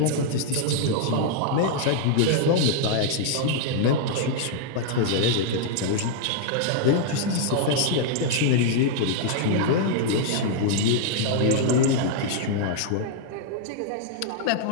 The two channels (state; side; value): different; both; correlation -0.01